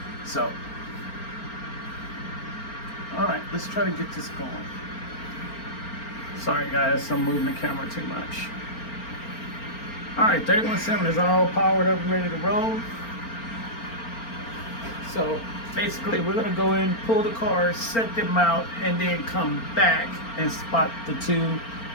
So, all right, let's try to get this going. Sorry guys, I'm moving the camera too much. All right, 3107 is all powered up and ready to roll. So basically we're gonna go in, pull the cars, set them out, and then come back and spot the two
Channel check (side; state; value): right; late; 4.4 ms